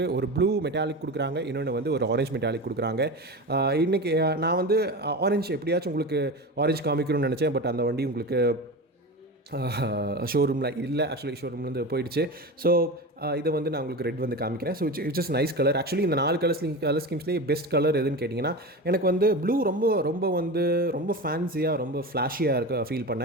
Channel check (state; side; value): normal; both; correlation 0.26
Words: ஒரு ப்ளூ மெட்டாலிக் கொடுக்குறாங்க, இன்னொன்று வந்து ஒரு ஆரஞ்ச் மெட்டாலிக் கொடுக்குறாங்க. இன்றைக்கி நான் வந்து ஆரஞ்சு எப்படியாச்சும் உங்களுக்கு ஆரஞ்சு காமிக்கணும்னு நினச்சேன். பட் அந்த வண்டி உங்களுக்கு ஷோரூமில் இல்லை. ஆக்சுவலி ஷோரூம்லேருந்து போயிடுச்சு. ஸோ இதை வந்து நான் உங்களுக்கு ரெட் வந்து காமிக்கிறேன். So it's is nice colour. Actually இந்த 4 கலர் ஸ்கீம்ஸ்லேயே பெஸ்ட் கலர் எதுன்னு கேட்டிங்கன்னா, எனக்கு வந்து ப்ளூ ரொம்ப ஃபேன்சியாக, ரொம்ப ஃப்ளாஷியாக இருக்க ஃபீல்